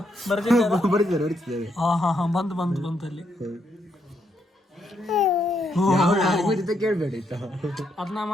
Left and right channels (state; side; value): normal; both; correlation 0.77